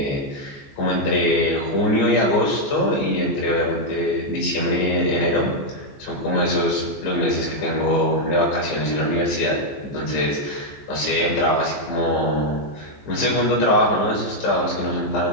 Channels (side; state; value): right; late; 14 ms